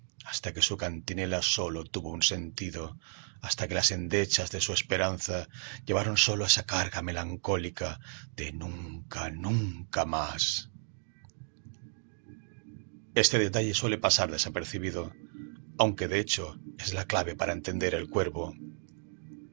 hasta que su cantinela solo tuvo un sentido, hasta que las endechas de su esperanza llevaron solo esa carga melancólica de nunca, nunca más. Este detalle suele pasar desapercibido, aunque de hecho es la clave para entender el cuervo.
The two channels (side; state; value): left; silent; 56 dB below the other